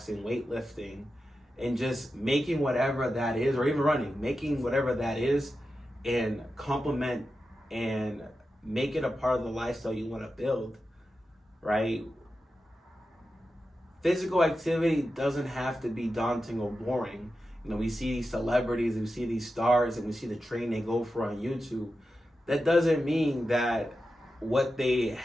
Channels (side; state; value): both; normal; correlation 0.91